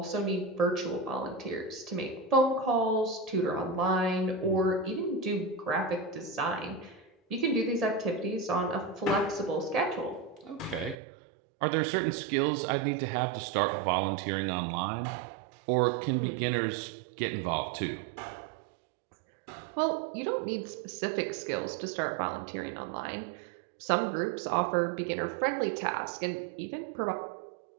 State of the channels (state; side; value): drops out; left; at 11.0 s